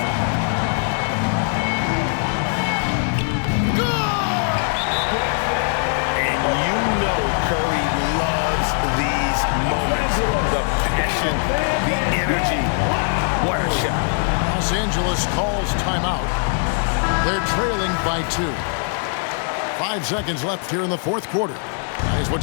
And you know Curry loves these moments. The passion, the energy. What a shot. Los Angeles calls timeout. They're trailing by 2. 5 seconds left here in the fourth quarter. Guys,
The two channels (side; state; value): right; silent; 62 dB below the other